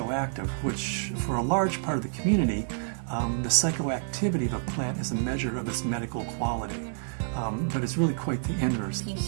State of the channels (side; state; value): left; silent; 59 dB below the other